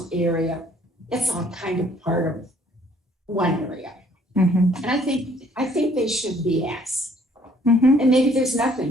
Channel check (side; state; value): both; normal; correlation 0.61